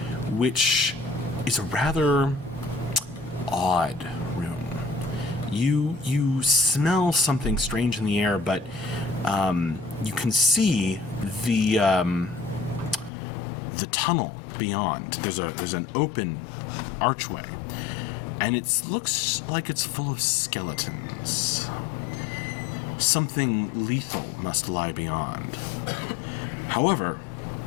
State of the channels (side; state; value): right; drops out; at 13.1 s